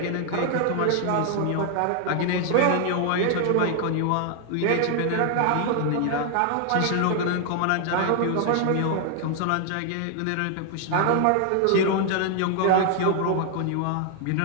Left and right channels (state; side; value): different; both; correlation 0.00